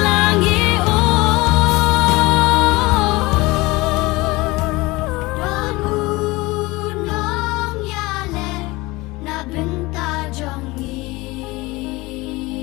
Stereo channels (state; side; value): quieter; right; 22.1 dB